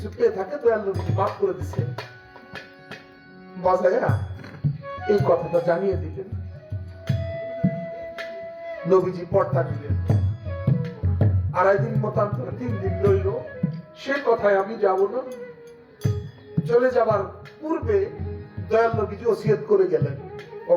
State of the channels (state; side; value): identical; both; correlation 1.00